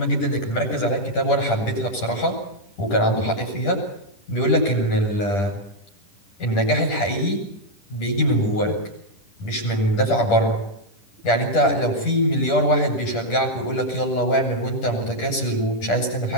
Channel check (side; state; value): right; late; 10 ms